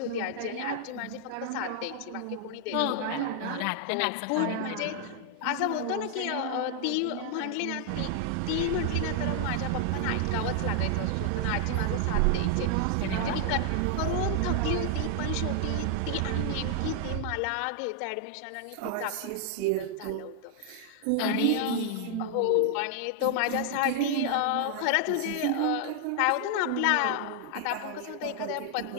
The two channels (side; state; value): both; different; correlation 0.00